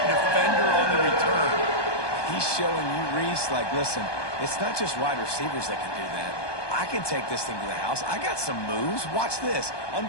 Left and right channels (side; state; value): right; late; 1.2 ms